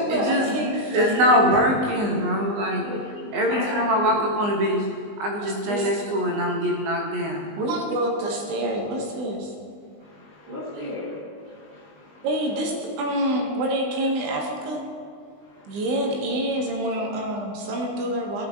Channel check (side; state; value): left; late; 20 ms